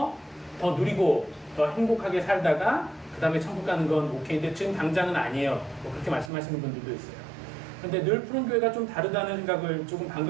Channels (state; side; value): drops out; left; at 6.3 s